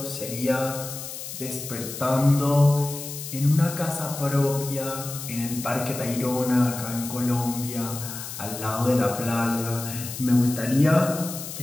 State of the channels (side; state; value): left; noise; hiss, 9 dB below the sound